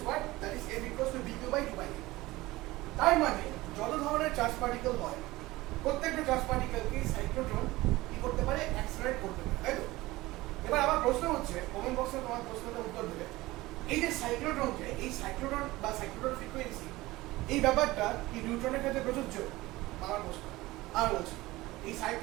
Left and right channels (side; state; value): left; quieter; 19.2 dB